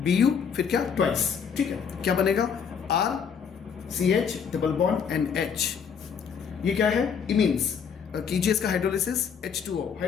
फिर क्या ट्वाइस, ठीक है। क्या बनेगा R CH double bond NH, ये क्या है इमीन्स। कीजिए इसका हाइड्रोलिसिस, H2O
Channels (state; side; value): quieter; right; 6.9 dB